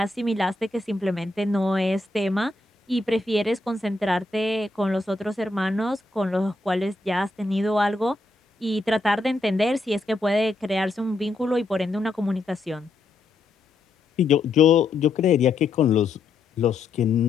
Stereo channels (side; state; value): right; quieter; 3.3 dB